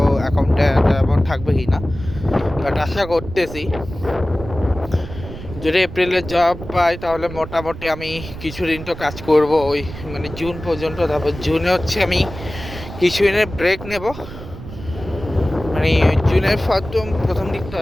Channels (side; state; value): right; noise; rumble, 12 dB below the sound